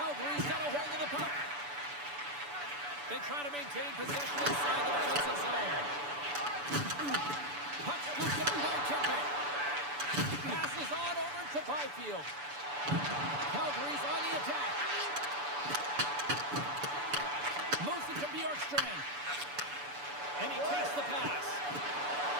got a hold of the puck. They try to maintain possession inside the defensive zone. Puck scooped up by Kempe. Passes on over to Byfield. Calgary's on the attack. Moves it to Bjorkstrand. And he takes the pass.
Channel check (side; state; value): left; late; 6.9 ms